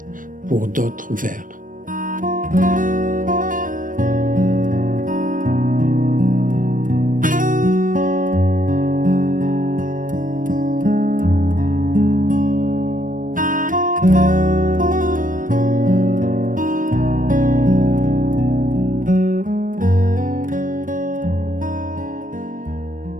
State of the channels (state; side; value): late; left; 0.39 ms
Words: pour d'autres vers.